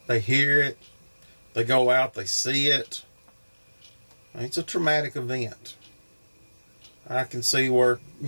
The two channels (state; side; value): inverted; both; correlation -1.00